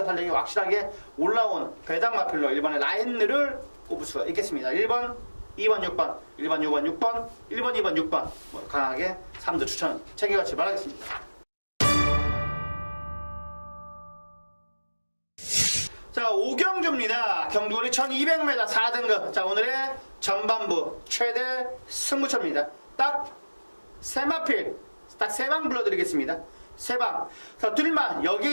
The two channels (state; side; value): inverted; both; correlation -1.00